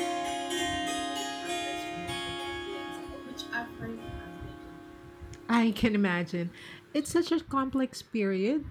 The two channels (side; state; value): both; identical; correlation 1.00